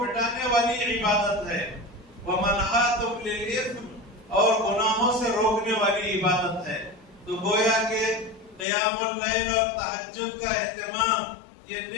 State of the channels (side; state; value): right; drops out; at 8.7 s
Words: والی عبادت ہے، ومنہاۃ للإثم، اور گناہوں سے روکنے والی عبادت ہے۔ تو گویا کہ قیام اللیل اور تہجد کا اہتمام یہ